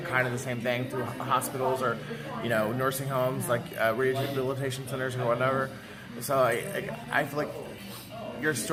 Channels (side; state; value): both; identical; correlation 1.00